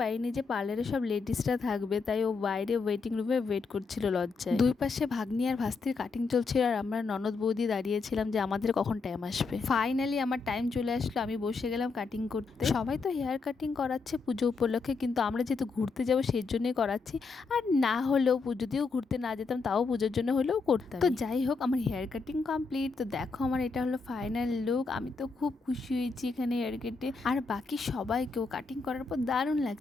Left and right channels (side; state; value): right; quieter; 4.5 dB